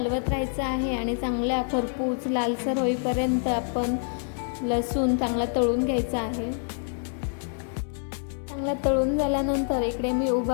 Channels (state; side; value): silent; right; 60 dB below the other